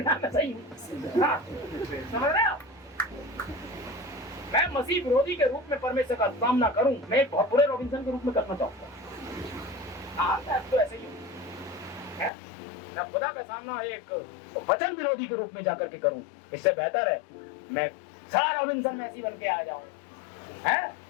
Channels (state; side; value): drops out; right; at 12.3 s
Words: जाए, मैं सही हूँ। हाँ, समझ रहे हो? मैं मसीह विरोधी के रूप में परमेश्वर का सामना करूं, मैं एक बहुत बुरे रॉबिन्सन के रूप में करना चाहूंगा। हाँ, तो ऐसे ही है, मैं खुदा का सामना एक वचन विरोधी के रूप में जाकर के करूं, इससे बेहतर है मैं सारा रॉबिन्सन मैसी बन के आ जाऊं, है